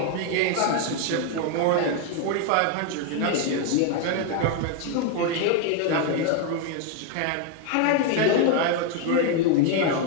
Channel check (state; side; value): different; both; correlation 0.01